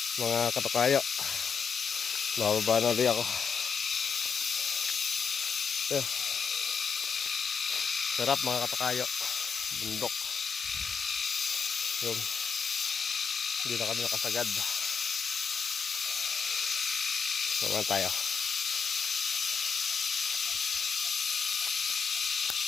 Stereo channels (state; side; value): quieter; right; 5.9 dB